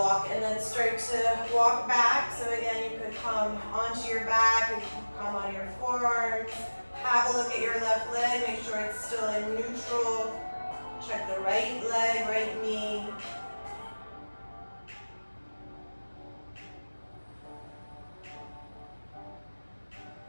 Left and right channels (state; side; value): inverted; both; correlation -1.00